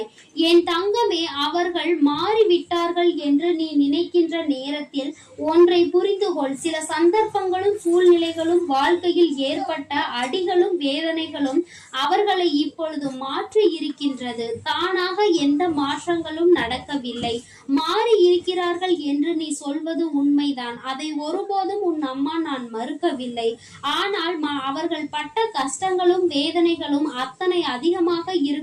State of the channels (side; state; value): both; identical; correlation 1.00